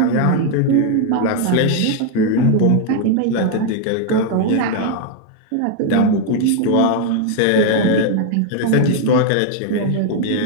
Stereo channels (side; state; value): both; different; correlation 0.01